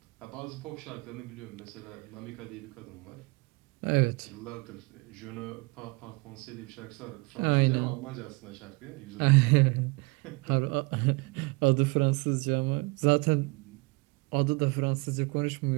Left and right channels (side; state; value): left; quieter; 27.1 dB